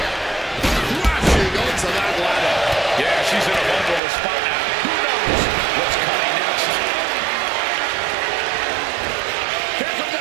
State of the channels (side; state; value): left; drops out; at 4.0 s